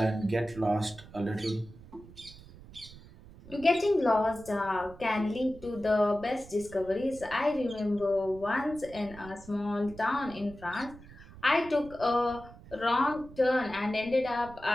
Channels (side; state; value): right; noise; rumble, 19 dB below the sound